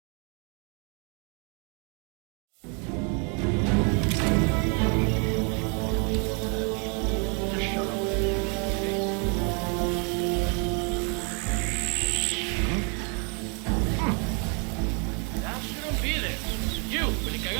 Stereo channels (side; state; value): left; quieter; 36.7 dB